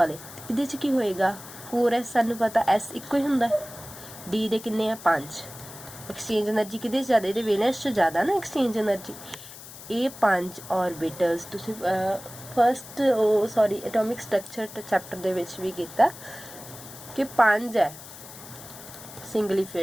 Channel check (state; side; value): noise; left; hiss, 15 dB below the sound